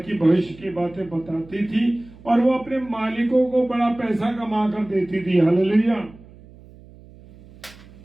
भविष्य की बातें बताती थी और वो अपने मालिकों को बड़ा पैसा कमा कर देती थी। Hallelujah,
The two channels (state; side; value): noise; right; hum, 22 dB below the sound